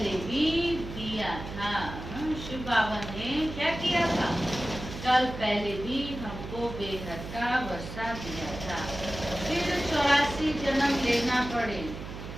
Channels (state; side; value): noise; right; hum, 10 dB below the sound